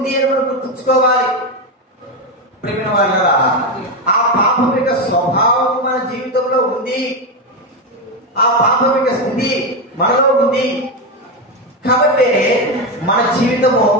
అని మనం గుర్తుంచుకోవాలి. ప్రేమ వాళ్ళరా, ఆ పాపం యొక్క స్వభావం మన జీవితంలో ఉంది, ఆ పాపం యొక్క స్థితి మనలో ఉంది. కాబట్టి మన జీవితము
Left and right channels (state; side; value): normal; both; correlation 0.10